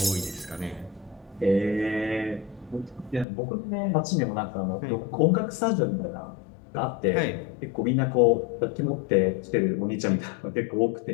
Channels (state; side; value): drops out; right; at 3.2 s